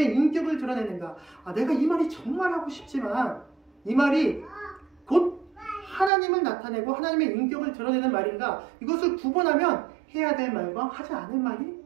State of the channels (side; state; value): left; drops out; at 6.1 s